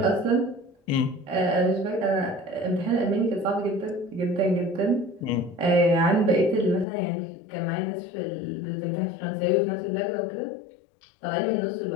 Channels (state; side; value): drops out; right; at 6.9 s